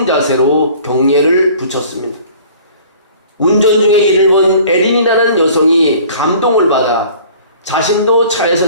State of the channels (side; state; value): both; inverted; correlation -0.49